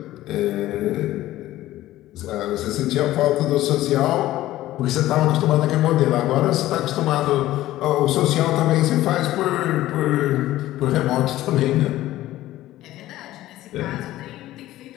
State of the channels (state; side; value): quieter; right; 15.2 dB